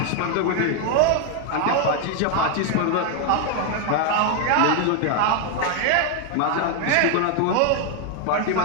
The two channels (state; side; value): different; both; correlation 0.01